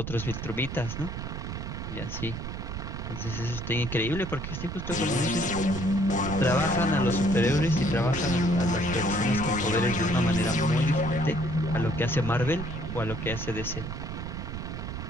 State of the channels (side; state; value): right; noise; rumble, 6 dB below the sound